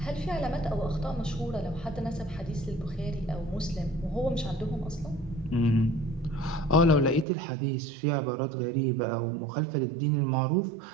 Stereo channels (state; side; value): drops out; left; at 7.2 s